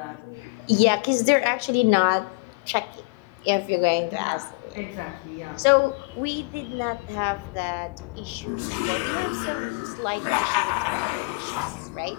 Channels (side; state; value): right; quieter; 30.0 dB